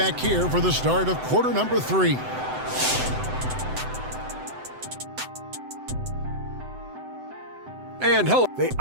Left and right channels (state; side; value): late; left; 7.9 ms